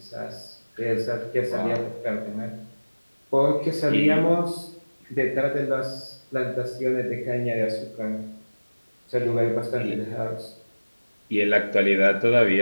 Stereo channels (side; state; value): both; inverted; correlation -1.00